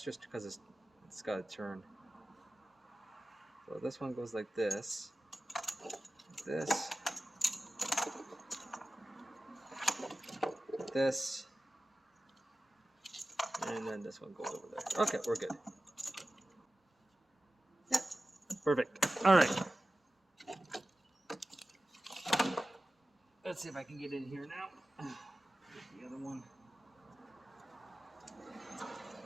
just because it's got to turn. So this one goes like this, this, this, and then this one goes over there. Okay, we're good. Yeah, perfect. All right. Let's see if I can get in here now. Get the other one.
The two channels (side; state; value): both; normal; correlation 0.95